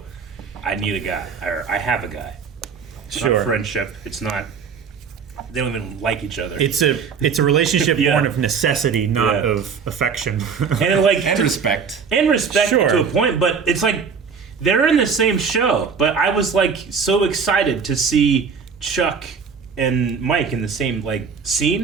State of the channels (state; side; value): quieter; left; 6.0 dB